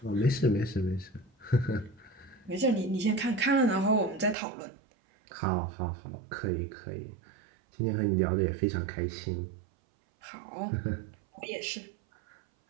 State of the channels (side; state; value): left; drops out; at 4.4 s